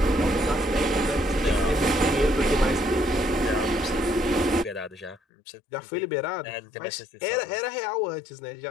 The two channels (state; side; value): drops out; right; at 5.2 s